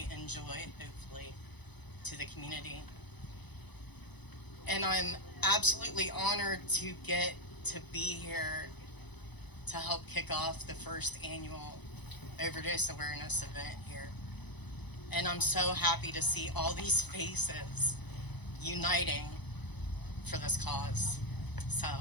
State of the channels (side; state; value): right; late; 0.99 ms